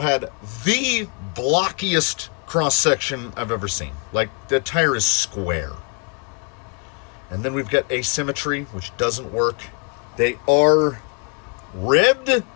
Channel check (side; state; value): right; quieter; 36.1 dB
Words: the blockiest cross-section I've ever seen. The tire is square. And then we've got asymmetry, which doesn't work. They are ribbed